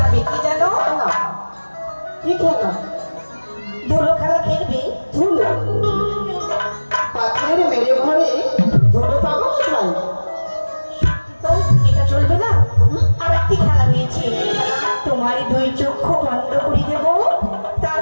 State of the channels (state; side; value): inverted; both; correlation -1.00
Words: কি জানো? কি খেলা? ধুলো খেলা খেলবে? ধুলো?